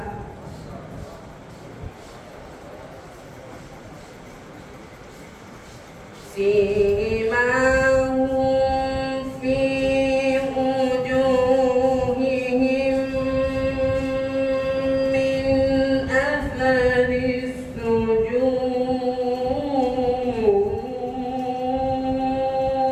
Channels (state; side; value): identical; both; correlation 1.00